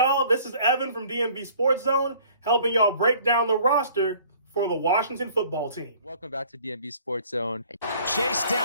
This is Evan from DMV Sports Zone, helping y'all break down the roster for the Washington football team. Welcome back to DMV Sports Zone. Chased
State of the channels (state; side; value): inverted; both; correlation -0.53